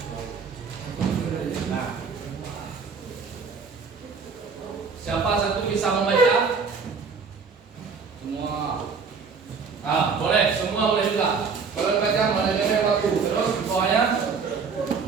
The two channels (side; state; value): left; quieter; 5.3 dB